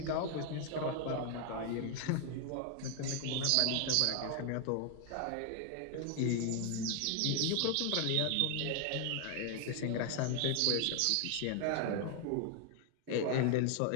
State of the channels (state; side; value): different; both; correlation 0.00